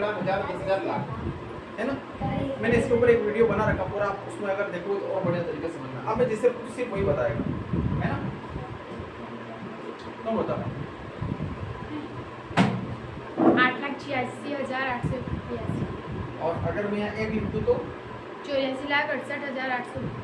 हजार, 10,000, लाख, है ना। मैंने इसके ऊपर एक वीडियो बना रखा पूरा, आप उसमें अगर देखो तो और बढ़िया तरीके से समझना। अब मैं जिससे पूछ सिर्फ वही बताएगा, है ना। तो बताओ 8,86,882 और अगर मैं यहाँ एक लिख दूँ तो 84,68,800।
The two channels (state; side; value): identical; both; correlation 1.00